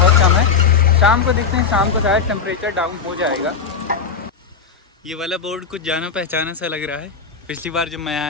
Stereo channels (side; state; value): right; quieter; 5.7 dB